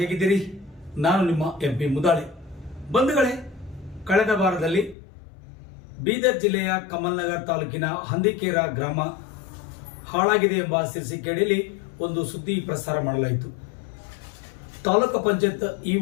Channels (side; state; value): right; drops out; at 5.0 s